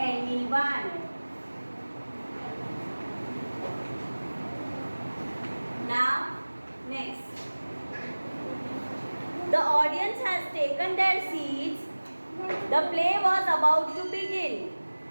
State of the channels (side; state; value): both; inverted; correlation -1.00